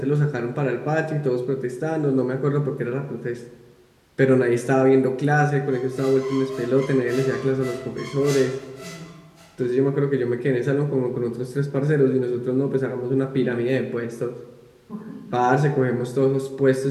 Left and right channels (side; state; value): both; identical; correlation 1.00